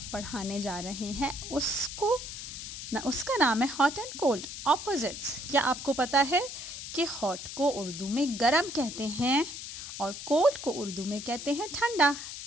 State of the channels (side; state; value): left; noise; hiss, 9 dB below the sound